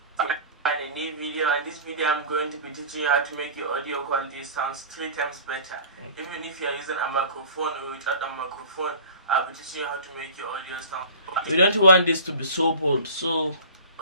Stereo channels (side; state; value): both; inverted; correlation -0.39